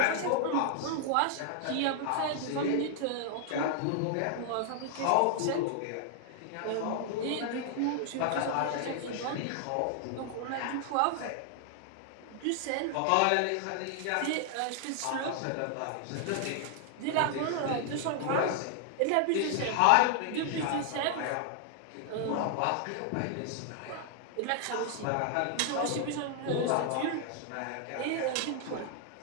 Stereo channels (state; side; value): different; both; correlation 0.00